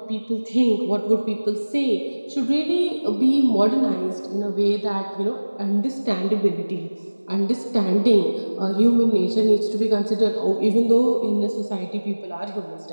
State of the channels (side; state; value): both; inverted; correlation -1.00